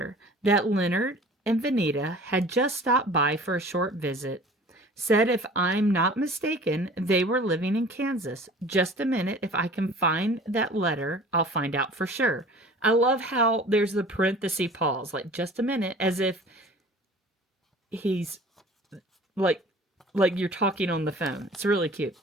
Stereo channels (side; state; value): both; normal; correlation 0.45